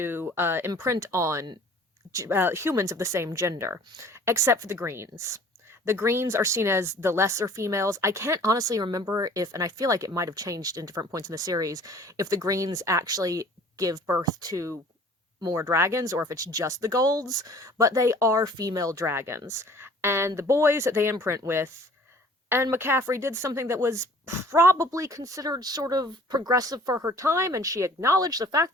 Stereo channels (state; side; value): normal; both; correlation 0.50